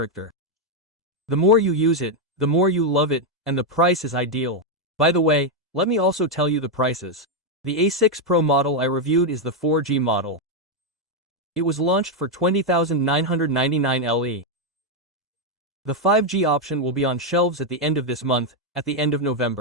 The more you use it, the more you love it, and the price is ideal. By the way, let me also tell you the prices. The A6 Pro model I reviewed is the 4G model. It was launched for 20,999 LE. The 5G option will be on shelves at the end of this month, at the end of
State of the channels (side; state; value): both; normal; correlation 0.02